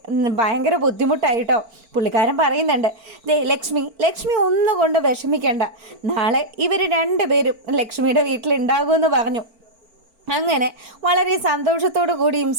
ഭയങ്കര ബുദ്ധിമുട്ടായിട്ടോ. പുള്ളിക്കാരൻ പറയുന്നുണ്ട്, ദേ ലക്ഷ്മി ഒന്നുകൊണ്ട് വിഷമിക്കണ്ട, നാളെ ഇവർ രണ്ടുപേരും ലക്ഷ്മിയുടെ വീട്ടിലുണ്ടാകുമെന്ന് പറഞ്ഞു. അങ്ങനെ വളരെ സന്തോഷത്തോടു കൂടിയും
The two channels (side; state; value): left; late; 4.4 ms